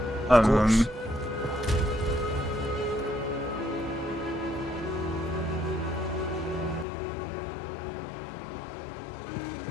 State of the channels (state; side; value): drops out; right; at 6.9 s